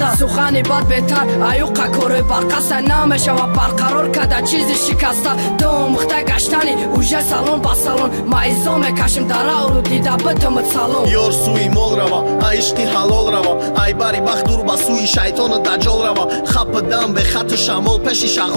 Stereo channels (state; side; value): inverted; both; correlation -1.00